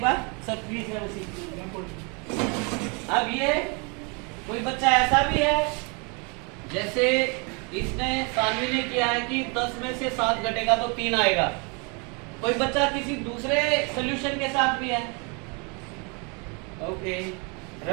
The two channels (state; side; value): quieter; left; 32.9 dB